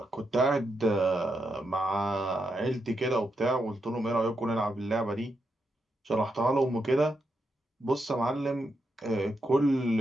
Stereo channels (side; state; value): both; normal; correlation 0.83